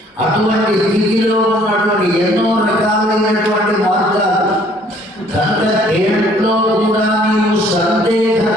అటువంటి స్థితిలో ఉన్నటువంటి ఎన్నో రకాలైనటువంటి మార్గాలు. కనుక దేంట్లో కూడా నీవు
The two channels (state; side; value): normal; both; correlation 0.59